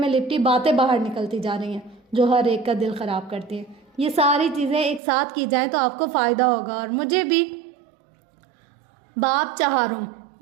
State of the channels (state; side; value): drops out; left; at 5.0 s